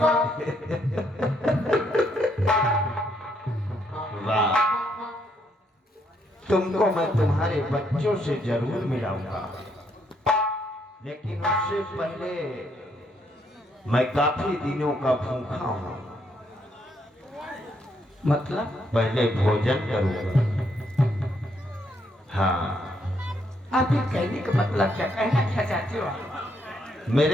वाह, तुमको मैं तुम्हारे बच्चों से जरूर मिलाऊंगा, लेकिन उससे पहले मैं काफी दिनों का भूखा हूँ। मतलब? पहले भोजन करूंगा। हाँ, आप ये कहने का मतलब क्या, कहना क्या चाहते हो आप?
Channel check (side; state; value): both; normal; correlation 0.73